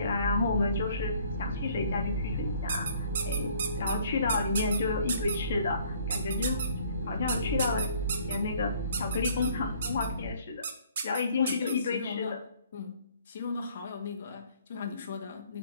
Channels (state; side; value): inverted; both; correlation -0.59